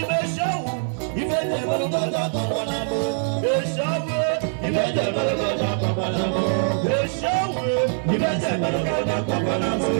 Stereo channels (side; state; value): left; silent; 56 dB below the other